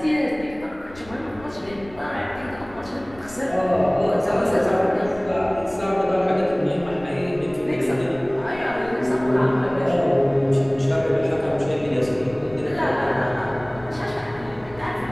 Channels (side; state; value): left; noise; rumble, 20 dB below the sound